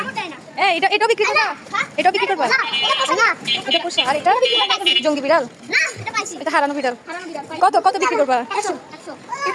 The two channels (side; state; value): both; identical; correlation 1.00